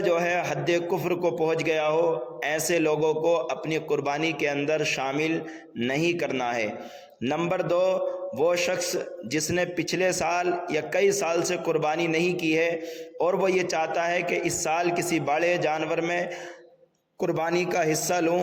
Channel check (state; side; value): identical; both; correlation 1.00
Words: جو ہے حد کفر کو پہنچ گیا ہو، ایسے لوگوں کو اپنی قربانی کے اندر شامل نہیں کرنا ہے۔ نمبر 2، وہ شخص جس نے پچھلے سال یا کئی سال سے قربانی نہیں کی ہے اور وہ یہ چاہتا ہے کہ اس سال کسی بڑے جانور میں قربانی کا حصہ لوں،